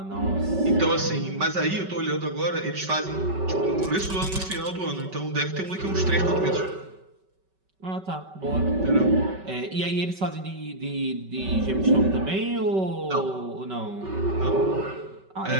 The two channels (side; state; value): left; late; 5.3 ms